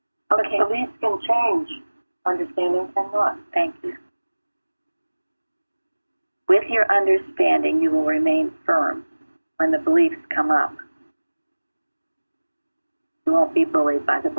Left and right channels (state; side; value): inverted; both; correlation -1.00